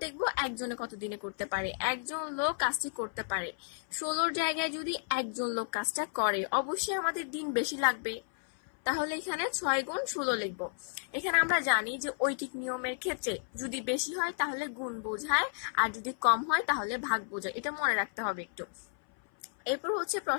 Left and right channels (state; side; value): silent; right; 56 dB below the other